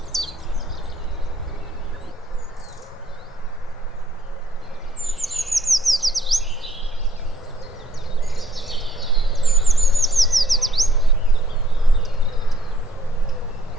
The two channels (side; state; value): both; normal; correlation 0.63